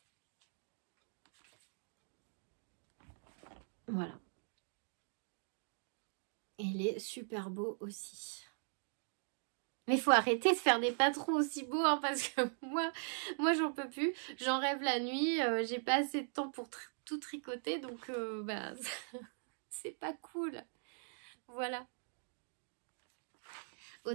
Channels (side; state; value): left; silent; digital silence